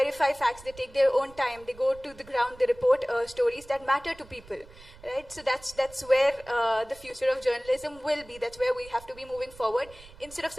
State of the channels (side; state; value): right; noise; rumble, 21 dB below the sound